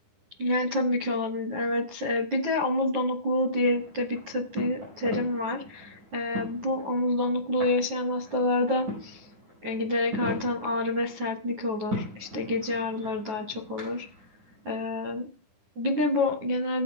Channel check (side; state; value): left; late; 9.9 ms